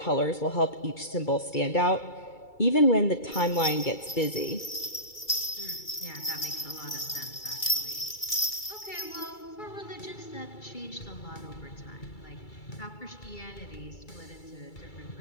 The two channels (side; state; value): right; late; 2.3 ms